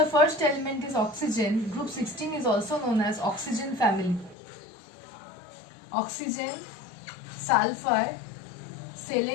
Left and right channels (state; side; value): drops out; right; at 4.4 s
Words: first element is oxygen, group 16 is also known as oxygen family. Oxygen, sulfur,